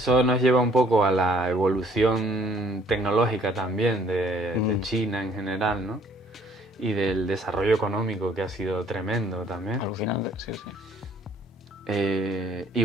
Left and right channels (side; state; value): both; normal; correlation 0.60